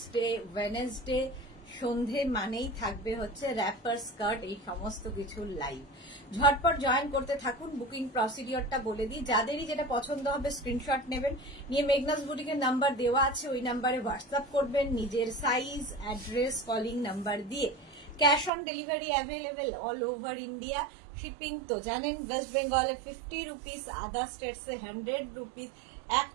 সন্ধে মানেই থাকবে হচ্ছে র্যাপার, স্কার্ট, এই সমস্ত কিছু লাইভ। ঝটপট জয়েন করতে থাকুন। বুকিং প্রসিডিওরটা বলে দিই, যাদেরই যেটা পছন্দ হবে স্ক্রিনশট নেবেন, নিয়ে মেঘনাস বুটিকের নাম্বার দেওয়া আছে, ওই নাম্বারে হোয়াটসঅ্যাপ করবেন নিজের সাইজ, অ্যাড্রেস, কলিং নাম্বার দিয়ে। Cash on delivery available all over India. Shipping তো জানেন, ওয়েস্ট বেঙ্গলে 50 রুপিস, আদার স্টেটসে 100 রুপিস।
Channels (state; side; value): drops out; left; at 18.5 s